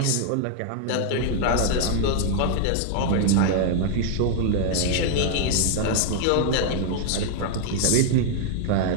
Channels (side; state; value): both; different; correlation 0.00